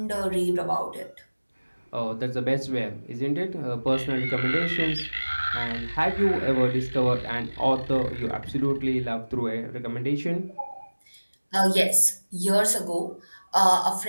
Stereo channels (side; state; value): both; inverted; correlation -1.00